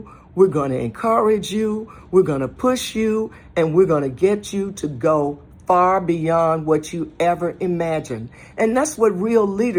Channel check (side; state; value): both; identical; correlation 1.00